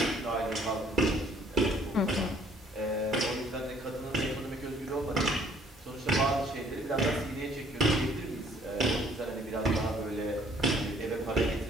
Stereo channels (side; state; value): both; normal; correlation 0.60